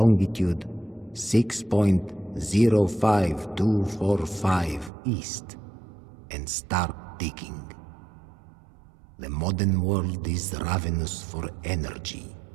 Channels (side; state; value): left; drops out; at 4.9 s